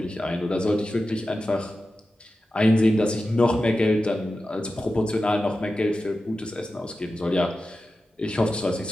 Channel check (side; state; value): both; normal; correlation 0.93